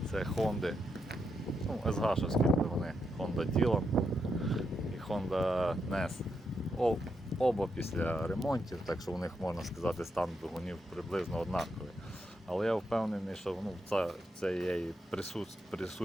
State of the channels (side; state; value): both; normal; correlation 0.82